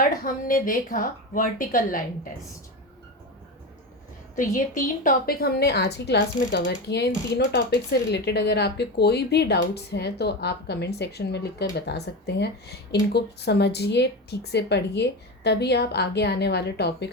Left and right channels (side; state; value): both; normal; correlation 0.21